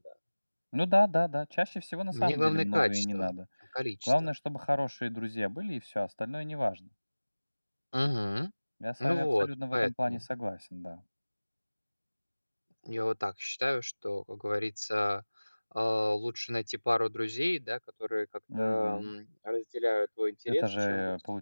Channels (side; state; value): both; inverted; correlation -1.00